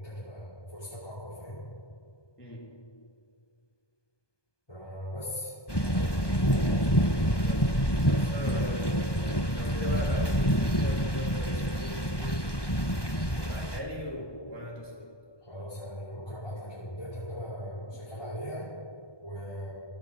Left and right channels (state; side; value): late; right; 1.2 ms